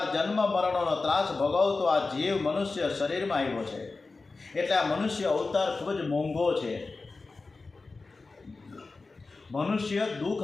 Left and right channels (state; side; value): quieter; right; 3.8 dB